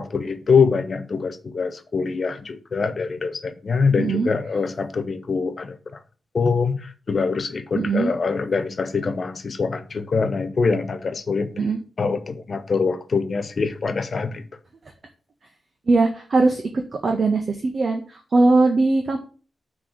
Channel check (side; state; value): both; normal; correlation 0.86